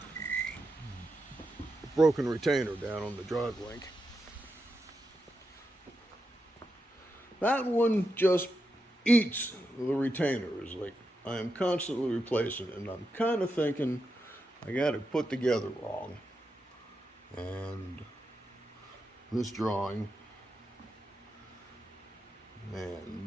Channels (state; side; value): normal; both; correlation 0.86